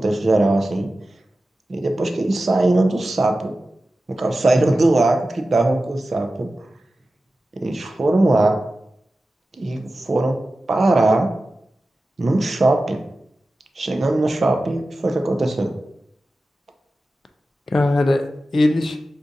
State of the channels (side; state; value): both; normal; correlation 0.94